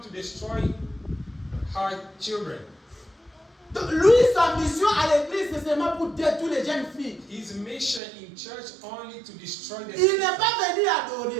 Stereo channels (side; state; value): left; drops out; at 8.0 s